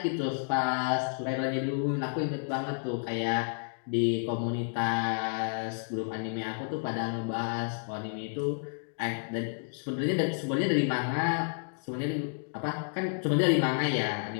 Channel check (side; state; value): right; silent; digital silence